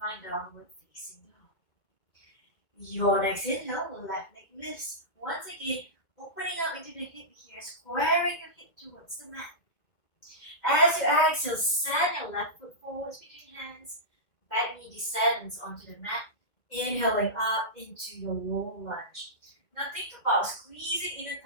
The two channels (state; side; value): late; right; 1.9 ms